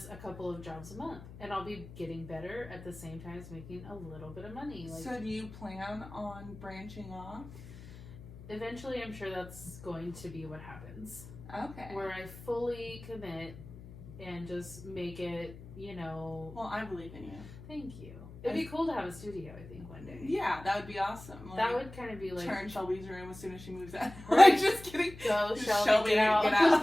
a couple of jobs a month. And I'll be getting better at the same time as making a little bit of money. Like, so do you plan on branching off? Eventually, I'm sure that's going to be what happens. Okay. Where I fully commit and just make it, Well, I believe in you. Thank you. It'd be cool to have a studio, I think, one day. Yeah, that would be awesome. That would kind of be like... Turn Shelby's room as soon as she moves out. Right. Like, just kidding. Go, Shelby, get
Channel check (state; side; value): noise; left; hum, 16 dB below the sound